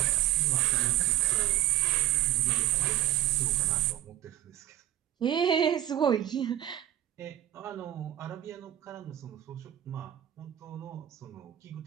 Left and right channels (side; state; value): left; quieter; 12.7 dB